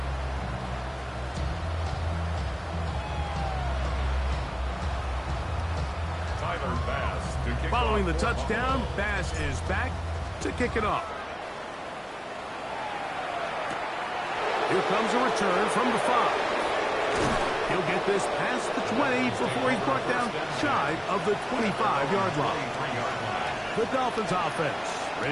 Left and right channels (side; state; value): both; identical; correlation 1.00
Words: Following the touchdown, Bass is back to kick it off. Here comes a return from the 5. He'll get this past the 20 before he's brought down shy of the 25-yard line. The Dolphins offense